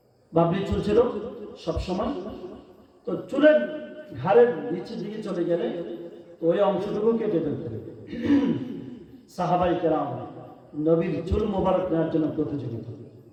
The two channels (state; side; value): identical; both; correlation 1.00